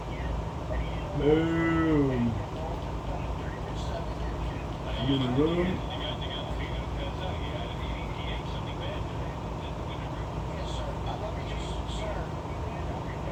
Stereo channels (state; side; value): identical; both; correlation 1.00